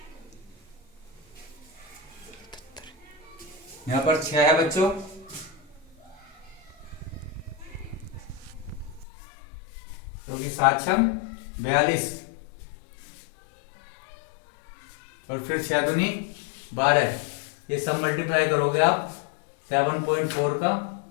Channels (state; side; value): drops out; right; at 9.1 s